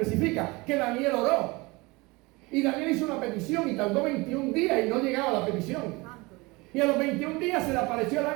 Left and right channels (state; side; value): quieter; left; 24.2 dB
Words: que Daniel oró. Y Daniel hizo una petición y tardó 21 días y no llegaba a la petición. Y a los 21 días se le apareció el